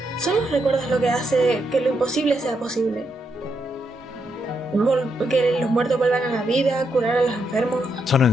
Son los recuerdos lo que hace que lo imposible sea posible. Que los muertos vuelvan a la vida, curar a los enfermos.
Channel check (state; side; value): normal; both; correlation 0.80